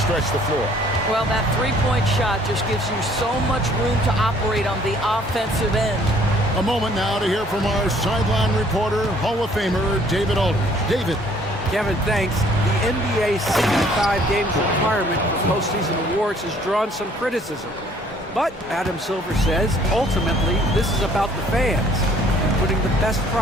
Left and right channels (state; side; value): normal; both; correlation 0.59